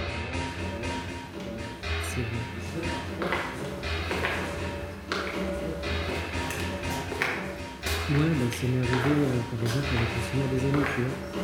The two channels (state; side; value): identical; both; correlation 1.00